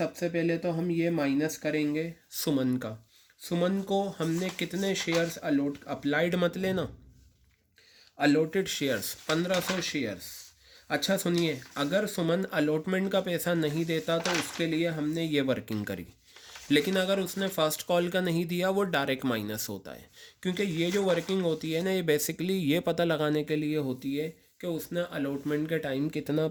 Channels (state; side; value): identical; both; correlation 1.00